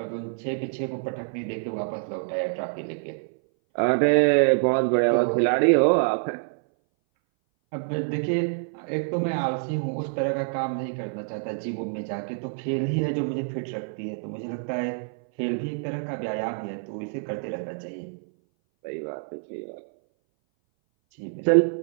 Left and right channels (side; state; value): left; silent; 59 dB below the other